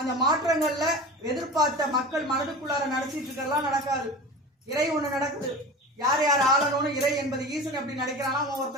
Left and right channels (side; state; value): both; normal; correlation 0.33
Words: அந்த மாற்றங்கள்ல எதிர்பார்த்த மக்கள் மனதுக்குள்ளார நடத்திட்டு இருக்கலாம் நடக்காது. இறை ஒண்ணு நடக்குது. யார் ஆளணும்னு இறை என்பது ஈசன் எப்படி நினைக்கிறானா,